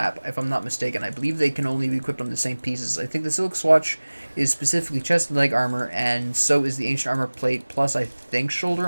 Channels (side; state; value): both; inverted; correlation -1.00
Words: if I'm not mistaken. I believe they can only be equipped on the same pieces. I think the silk swatch is specifically chest and leg armor, and so is the ancient armor plate, plus I think shoulder